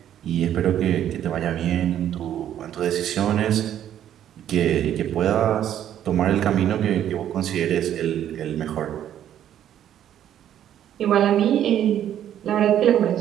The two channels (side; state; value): left; quieter; 10.7 dB